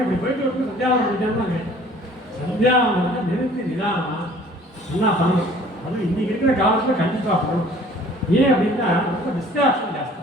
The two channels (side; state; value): both; normal; correlation 0.52